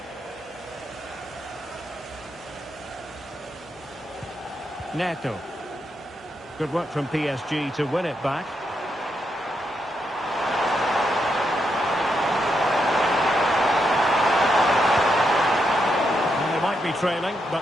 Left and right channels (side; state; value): both; normal; correlation 0.81